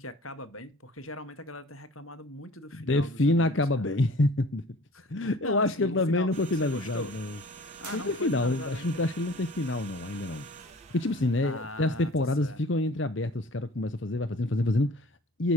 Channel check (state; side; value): normal; both; correlation 0.47